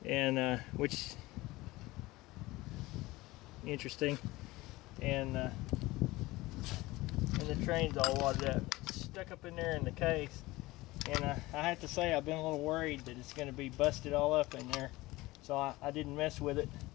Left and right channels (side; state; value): right; quieter; 19.8 dB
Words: and which interesting, and the train's all wadded up. It's stuck up in there in the case, and I have to say I've been a little worried that it's going to be busted all up in there, so I didn't mess with it.